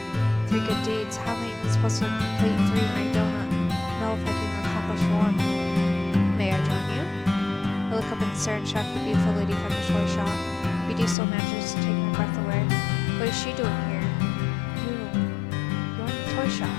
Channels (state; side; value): drops out; right; at 11.2 s